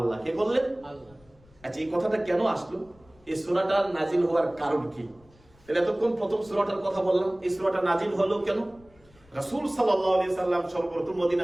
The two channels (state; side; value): noise; left; rumble, 29 dB below the sound